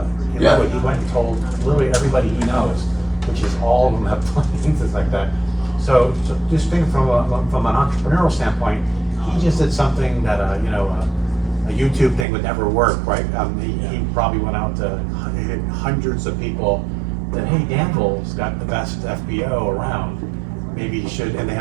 it. He went and told literally everybody he knows, which is all of them have things like that. So just think from an entrepreneurial standpoint, he just did something that a YouTube thing would never work, right? He probably went out to hundreds of people that, hey, Danville's got the best FBO around. Maybe you should, and they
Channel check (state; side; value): drops out; left; at 12.2 s